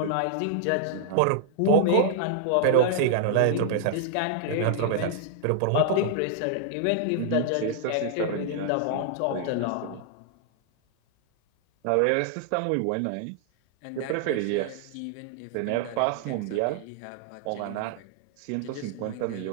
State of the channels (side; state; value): both; different; correlation -0.01